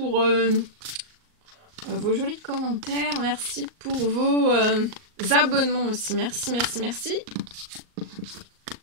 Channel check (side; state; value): left; late; 38 ms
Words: vos jolis commentaires. Merci pour vos abonnements aussi. Merci.